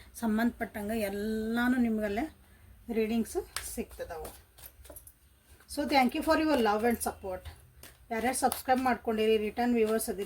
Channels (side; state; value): both; identical; correlation 1.00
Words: ಸಂಬಂಧಪಟ್ಟಂಗೆ ಎಲ್ಲನೂ ನಿಮಗಲ್ಲೇ ರೀಡಿಂಗ್ಸು ಸಿಗ್ತದವು. So thank you for your love and support. ಯಾರ್ಯಾರು ಸಬ್ಸ್ಕ್ರೈಬ್ ಮಾಡ್ಕೊಂಡಿರಿ, ರಿಟರ್ನ್ ವ್ಯೂವರ್ಸ್